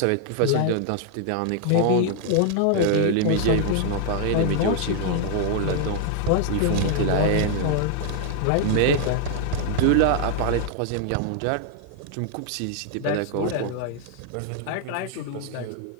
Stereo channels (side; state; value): both; different; correlation 0.00